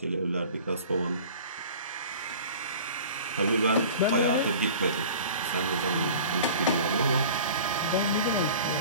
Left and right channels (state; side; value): inverted; both; correlation -0.42